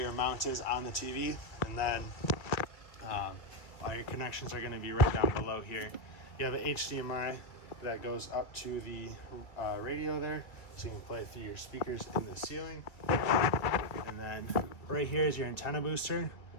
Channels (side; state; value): right; late; 2.3 ms